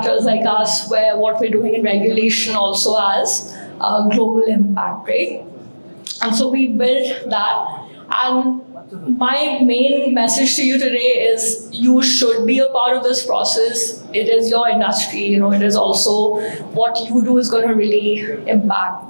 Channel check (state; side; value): inverted; both; correlation -1.00